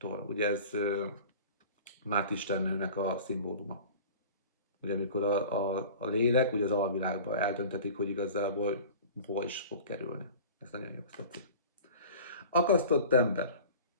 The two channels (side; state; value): both; inverted; correlation -0.40